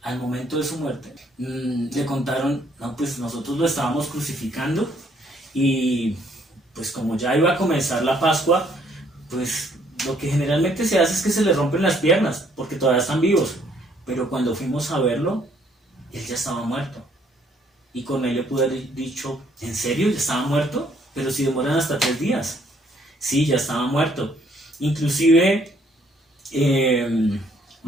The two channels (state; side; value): normal; both; correlation 0.66